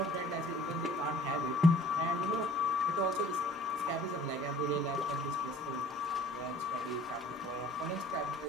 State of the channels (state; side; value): normal; both; correlation 0.52